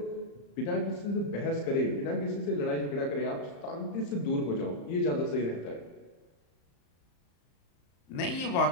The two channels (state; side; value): late; right; 35 ms